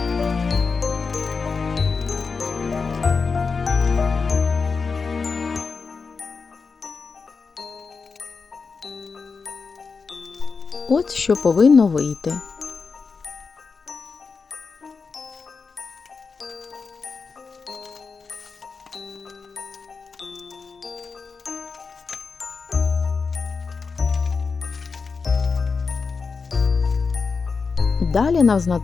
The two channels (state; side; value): quieter; right; 4.9 dB